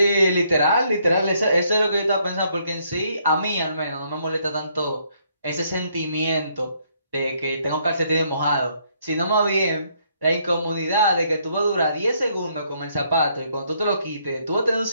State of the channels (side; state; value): both; inverted; correlation -0.70